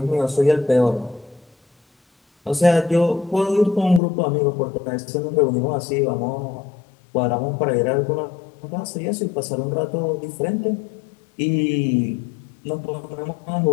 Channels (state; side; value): drops out; right; at 4.0 s